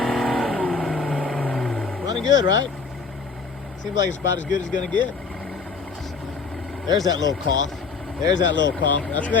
Running good, right? Seems like it's about as good as it's gonna get. There's that little cough. There's that little cough. That's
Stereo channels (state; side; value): quieter; right; 4.9 dB